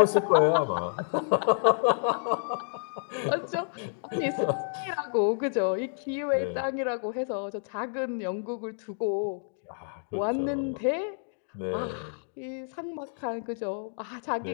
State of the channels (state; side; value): silent; right; digital silence